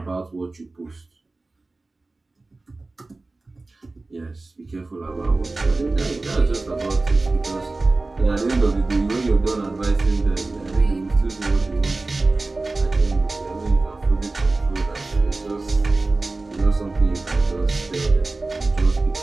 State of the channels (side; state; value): left; quieter; 3.3 dB